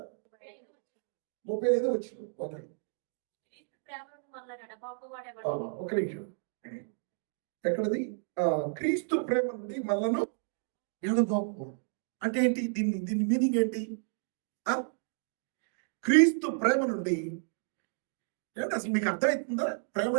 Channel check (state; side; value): silent; left; digital silence